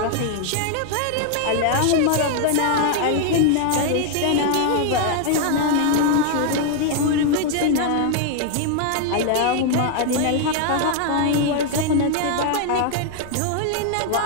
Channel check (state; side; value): different; both; correlation 0.00